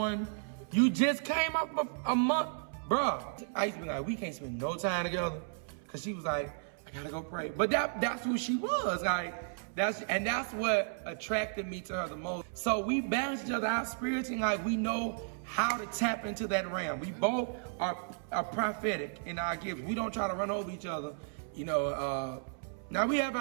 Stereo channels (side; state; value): left; silent; 55 dB below the other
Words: You just came up a month? Bruh, I used to be like, we can't spend no time together. Cause she was like, I gotta go pray. But that's who she was. Like, that's what attracted me to her the most. So we balance each other out spiritually, like we know how to tap into that realm. We both are prophetic in our gifts. We don't try to run over each other. You know, now we have